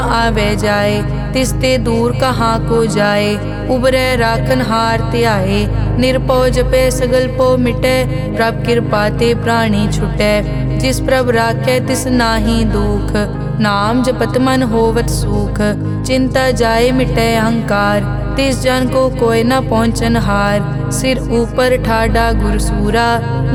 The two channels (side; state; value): both; identical; correlation 1.00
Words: जाए। तिसते दूर कहाँ को जाए, उबरे राखन हार त्याए। निरपौ जपे सगल पो मिटे, प्रभ कृपा ते प्राणी छुटे। जिस प्रभ राखे तिस नाहि दुख, नाम जपत मन होवत सुख। चिंता जाए मिटे अहंकार, तिस जन को कोय न पहुँचन हार। सिर ऊपर ठाडा गुरसूरा,